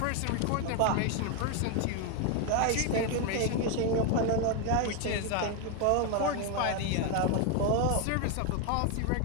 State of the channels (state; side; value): different; both; correlation 0.01